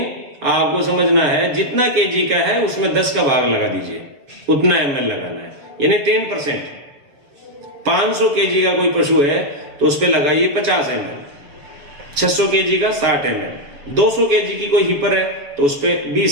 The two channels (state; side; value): late; left; 7.1 ms